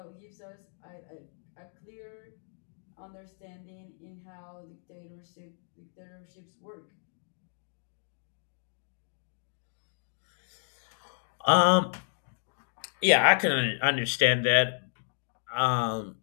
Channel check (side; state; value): right; silent; 57 dB below the other